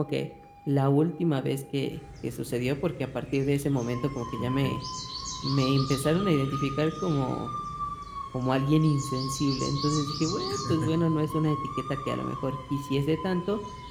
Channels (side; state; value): both; identical; correlation 1.00